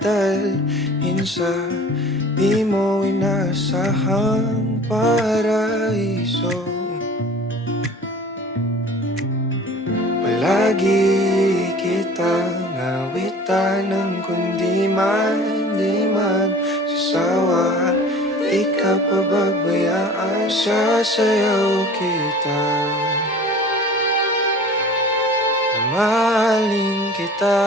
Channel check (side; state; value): both; normal; correlation 0.44